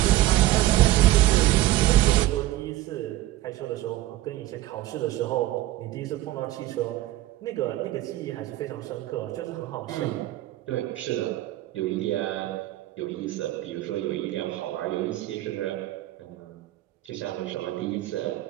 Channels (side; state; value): left; quieter; 15.9 dB